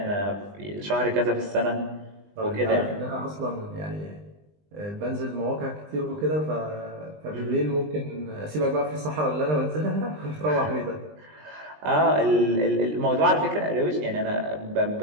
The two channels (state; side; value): late; left; 20 ms